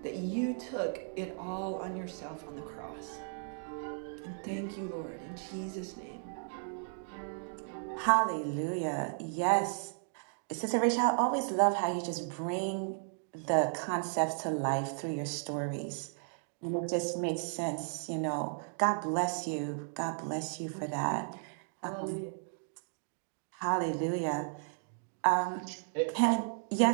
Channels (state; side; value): silent; left; digital silence